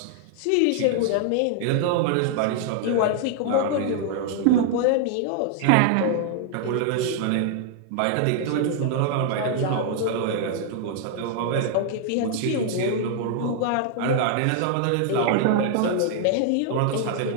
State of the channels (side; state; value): both; different; correlation 0.00